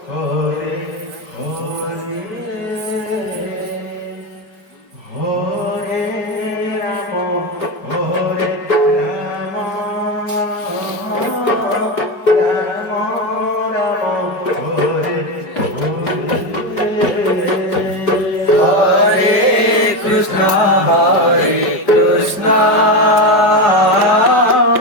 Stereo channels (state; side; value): late; right; 5.0 ms